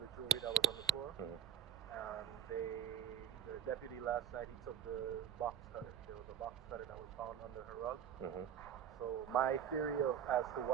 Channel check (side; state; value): left; quieter; 9.4 dB